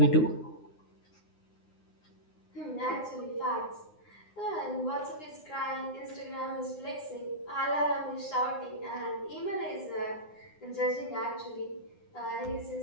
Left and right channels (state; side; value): late; right; 9.7 ms